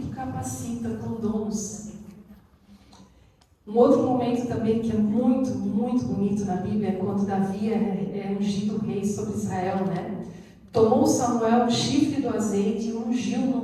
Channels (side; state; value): both; identical; correlation 1.00